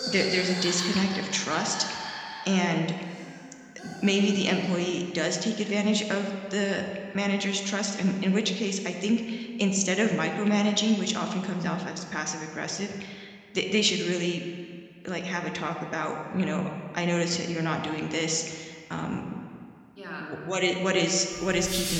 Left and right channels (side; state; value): both; identical; correlation 1.00